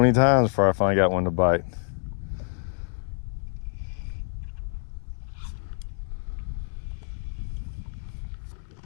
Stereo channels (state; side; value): silent; right; digital silence